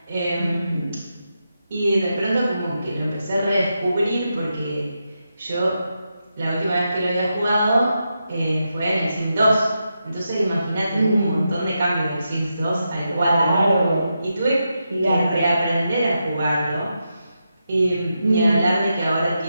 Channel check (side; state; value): both; inverted; correlation -0.86